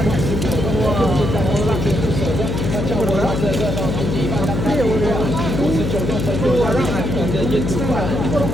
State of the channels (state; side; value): noise; left; hum, 2 dB below the sound